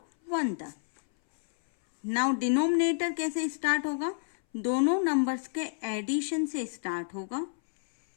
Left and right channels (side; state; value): right; silent; 58 dB below the other